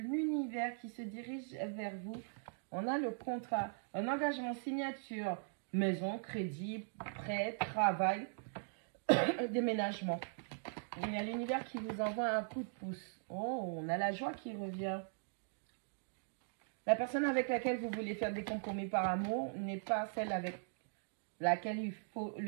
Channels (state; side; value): silent; left; digital silence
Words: qui se dirige vers vous. On a le contrat, un engagement, signature, maison, crédit, prêt, travail, déménagement. Il y a l'univers qui vous envoie un coup de pouce. Oh, on a la joie qui revient. La personne avec laquelle vous voulez faire des compromis par amour n'est pas celle avec laquelle il faut